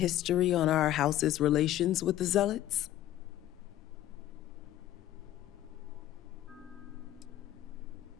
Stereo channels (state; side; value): quieter; right; 13.3 dB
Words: on our house's relations with the Zealots?